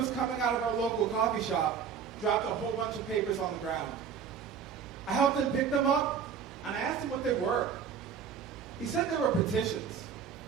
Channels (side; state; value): left; quieter; 7.1 dB